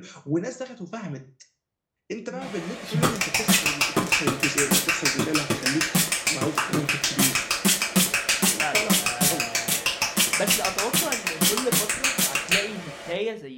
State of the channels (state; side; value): identical; both; correlation 1.00